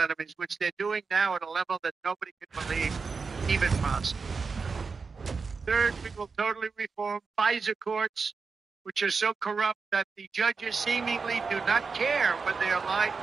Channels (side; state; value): left; quieter; 4.8 dB